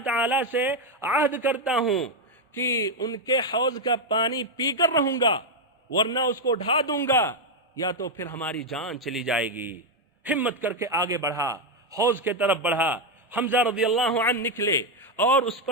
تعالیٰ سے عہد کرتا ہوں کہ ان کے حوض کا پانی پی کر رہوں گا ورنہ اس کو ڈھا دوں گا یا تو پھر ہماری جان چلی جائے گی۔ ہمت کر کے آگے بڑھا، حوض کے طرف بڑھا۔ حمزہ رضی اللہ عنہ نکلے اور اس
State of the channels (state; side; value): normal; both; correlation 0.03